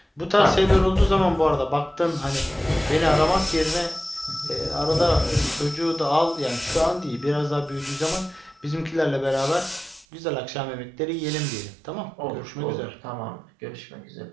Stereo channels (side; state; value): left; drops out; at 10.1 s